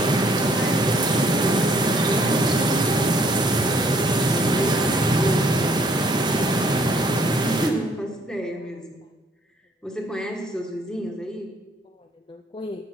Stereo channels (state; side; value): normal; both; correlation 0.64